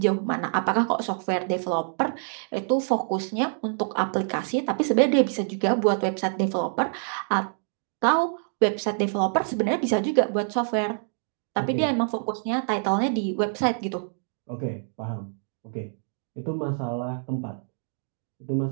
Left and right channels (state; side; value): silent; left; digital silence